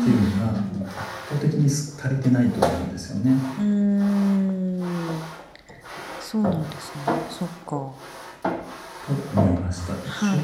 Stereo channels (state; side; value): identical; both; correlation 1.00